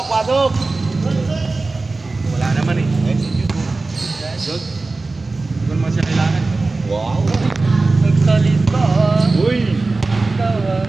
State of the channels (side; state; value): left; quieter; 3.5 dB